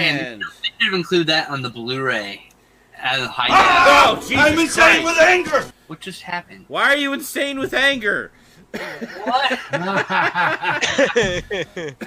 Man, they should have included that on the Blu-ray. As a high oh, Jesus I'm insane with anger! What just happened? Why are you insane with anger? What?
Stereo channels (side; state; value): both; identical; correlation 1.00